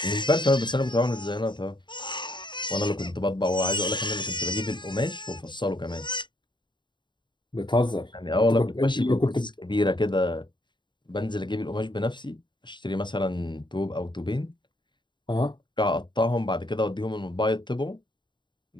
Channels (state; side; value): late; right; 0.22 ms